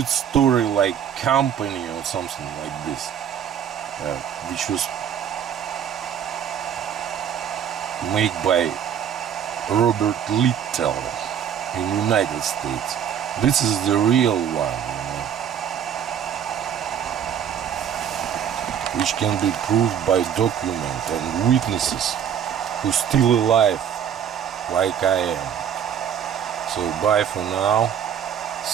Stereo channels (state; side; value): quieter; left; 8.9 dB